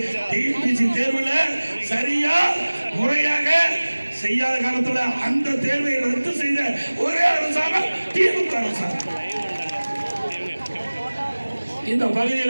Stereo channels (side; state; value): both; inverted; correlation -1.00